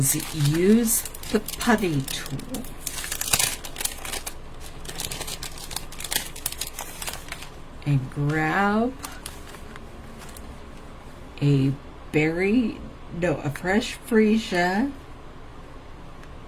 use the putty tool. and grab a fresh freesia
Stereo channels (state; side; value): identical; both; correlation 1.00